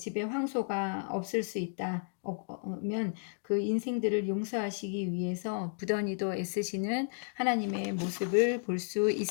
황소가 없을 수 있다면 그 인생들을 용서하시기 위해서 부단히도 애쓰시는 하나님의 모습을 볼 수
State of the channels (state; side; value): silent; right; digital silence